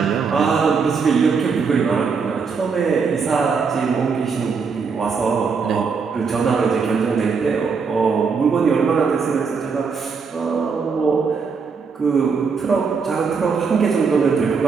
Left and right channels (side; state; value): left; quieter; 5.4 dB